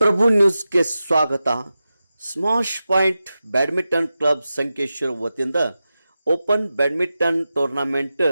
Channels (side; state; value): both; inverted; correlation -0.93